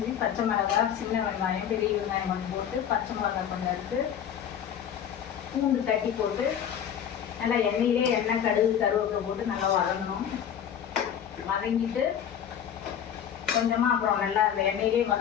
பச்சை மிளகாய், சின்ன வெங்காயம், பெரிய வெங்காயம் கொஞ்சம் போட்டு, பச்சை மிளகாய் கொஞ்சம் எடுத்து, பூண்டு தட்டி போட்டு, நல்லா எண்ணெயிலே எண்ணெய், கடுகு, கருவேப்பிலை போட்டு நல்லா வதங்கணும். வதங்கிட்டு கொஞ்சமாக அப்புறம் நல்லா அந்த எண்ணெயிலே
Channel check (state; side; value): quieter; right; 9.0 dB